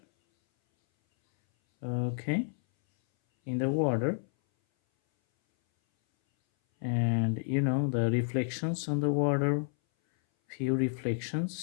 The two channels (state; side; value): silent; right; 58 dB below the other